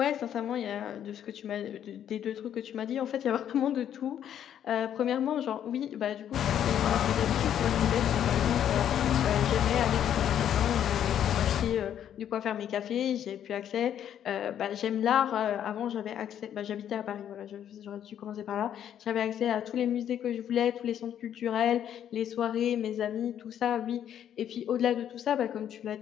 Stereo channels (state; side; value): quieter; right; 9.9 dB